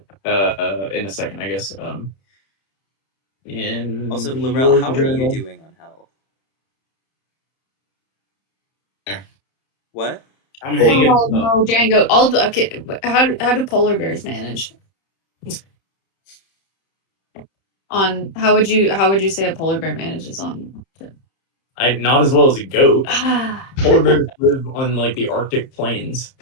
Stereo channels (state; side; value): late; right; 31 ms